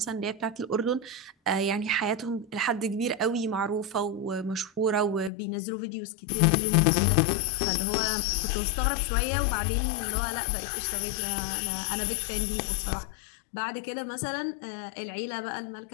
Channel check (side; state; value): right; drops out; at 5.3 s